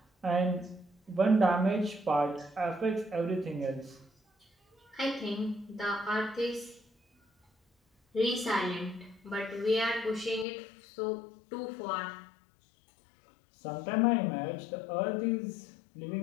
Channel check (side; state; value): right; drops out; at 10.5 s